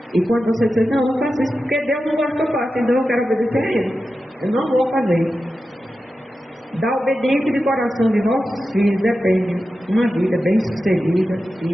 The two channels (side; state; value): both; normal; correlation 0.92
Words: E quando você diz, não, eu não faço isso porque Deus não gosta que eu faça, então eu quero obedecer a Ele. Eu não vou fazer. Da obediência de coração de nossos filhos depende uma vida bem sucedida